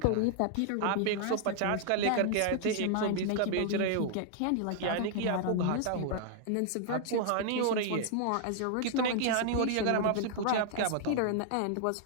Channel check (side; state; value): both; different; correlation -0.01